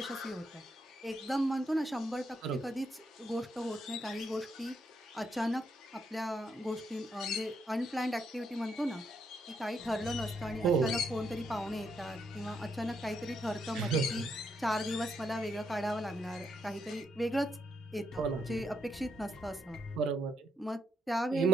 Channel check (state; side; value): normal; both; correlation 0.76